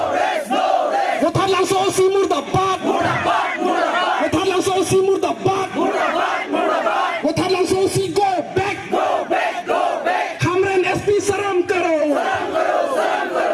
Wothat langso si murbad Wothat langso si murbad Wothat langso si go back Hamren SP saram karo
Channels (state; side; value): identical; both; correlation 1.00